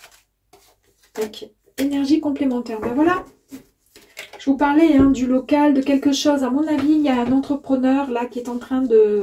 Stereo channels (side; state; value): both; identical; correlation 1.00